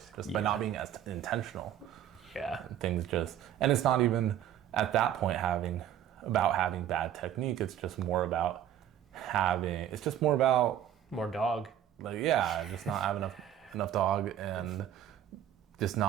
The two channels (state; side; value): quieter; left; 10.6 dB